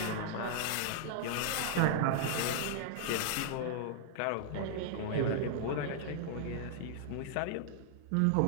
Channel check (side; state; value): both; different; correlation -0.01